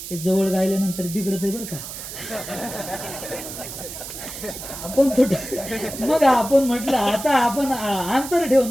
ते जवळ गायल्यानंतर बिघडत आहे बरं का. आपण मग आपण म्हटलं आता आपण अंतर ठेवून,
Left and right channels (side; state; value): right; noise; hiss, 10 dB below the sound